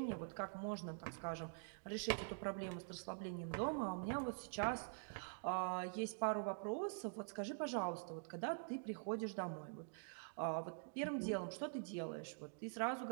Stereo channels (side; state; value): left; silent; digital silence